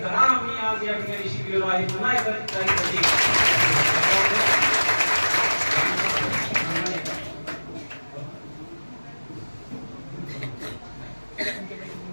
धडा आम्ही आज या ठिकाणी शिकलेलो आहे. पुन्हा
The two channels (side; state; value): both; inverted; correlation -1.00